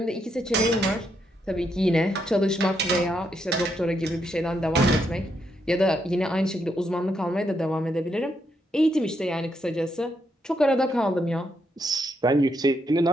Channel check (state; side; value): normal; both; correlation 0.78